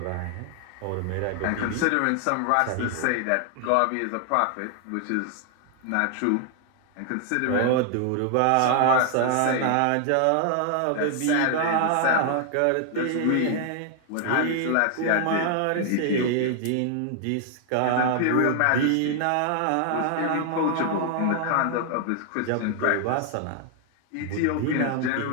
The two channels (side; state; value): both; different; correlation 0.00